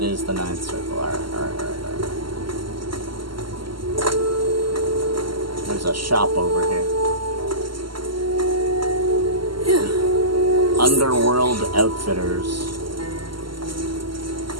is the ninth circle. Alright. There's a shop over here. Underworld Outfitters.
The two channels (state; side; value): late; left; 0.73 ms